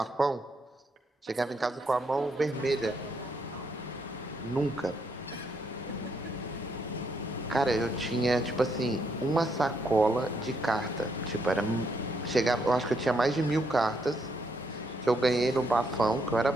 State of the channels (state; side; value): normal; both; correlation 0.75